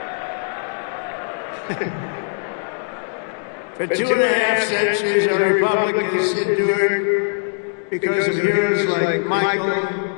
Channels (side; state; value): right; silent; digital silence